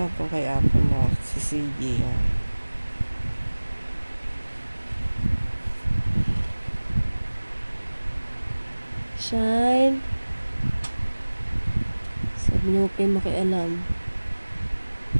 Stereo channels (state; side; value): inverted; both; correlation -1.00